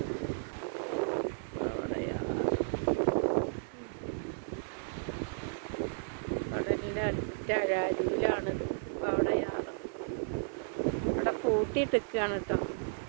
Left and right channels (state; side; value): silent; left; 55 dB below the other